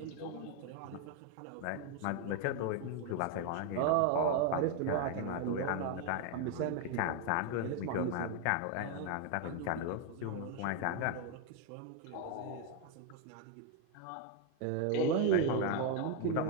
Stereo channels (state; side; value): different; both; correlation 0.01